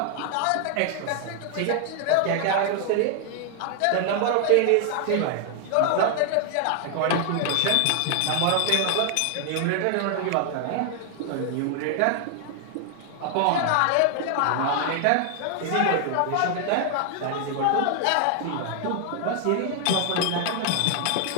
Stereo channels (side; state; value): both; different; correlation 0.00